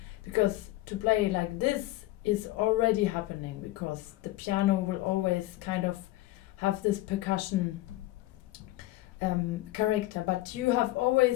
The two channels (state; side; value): quieter; right; 17.5 dB